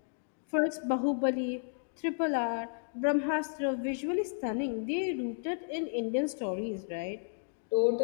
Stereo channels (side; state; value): right; silent; digital silence